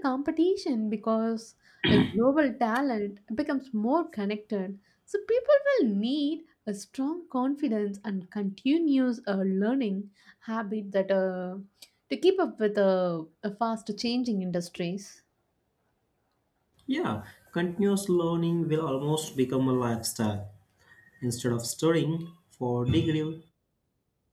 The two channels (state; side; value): identical; both; correlation 1.00